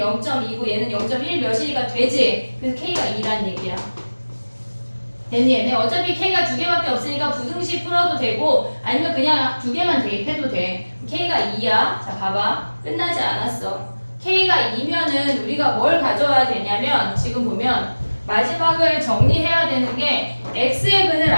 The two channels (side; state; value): both; inverted; correlation -1.00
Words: 얘는 0.1 몇이니까 되지. 그래서 K가 2란 얘기야. 됐니 얘네? 어차피 K가 두 개밖에 없으니까 부등식 풀어도 되고 아니면 그냥 두 개만 대입해도 돼. K가 2야. 자 봐봐. 끝나지 않았어. K가 2면은 우리가 뭘 가져와야 되냐면 지금 보면 마지막을 정리해야 되는 게 X의 근을